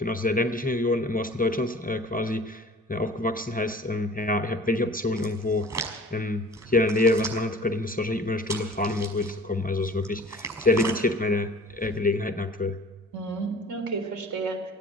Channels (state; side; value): normal; both; correlation 0.45